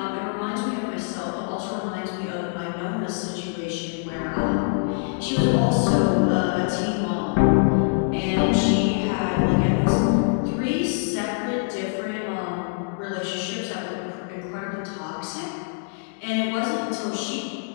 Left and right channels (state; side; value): silent; right; digital silence